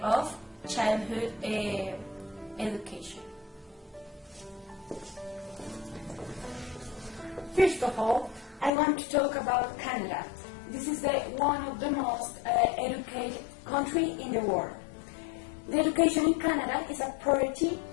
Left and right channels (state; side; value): drops out; right; at 8.7 s